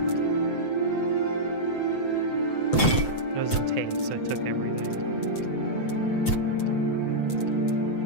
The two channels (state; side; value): late; right; 7.8 ms